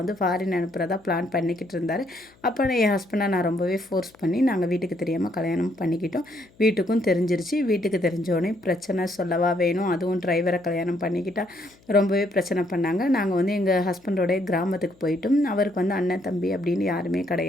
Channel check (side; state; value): left; noise; hum, 30 dB below the sound